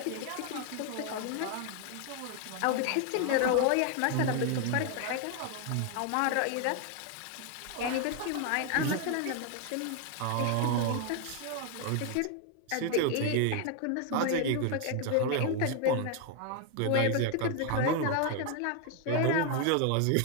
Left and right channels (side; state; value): both; different; correlation 0.01